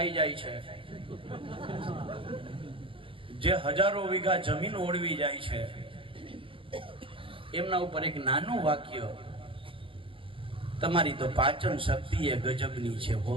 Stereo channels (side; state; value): left; late; 0.25 ms